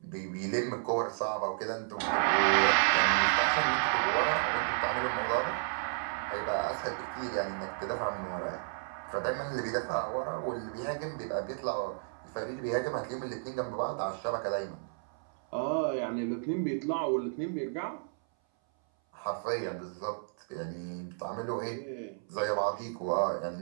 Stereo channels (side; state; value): left; silent; 56 dB below the other